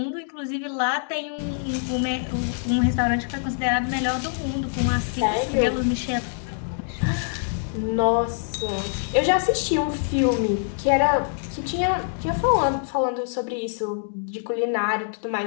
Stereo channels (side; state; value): right; silent; digital silence